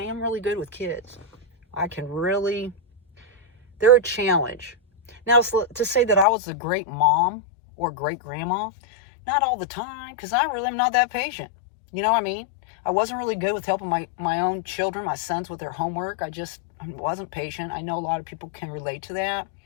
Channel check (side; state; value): right; drops out; at 6.2 s